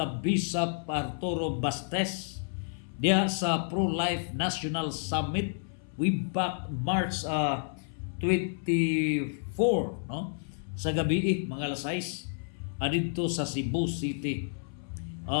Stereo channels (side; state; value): right; silent; 57 dB below the other